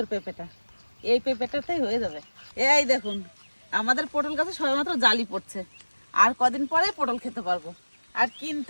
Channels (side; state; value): both; inverted; correlation -1.00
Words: পেঁপেটা, এই পেঁপেটাতেই হয়ে যাবে। এই দেখুন, আমাদের পটল গাছে সবেমাত্র জালি পড়ছে। আর কদিন পরে পটল খেতে পারবো, আর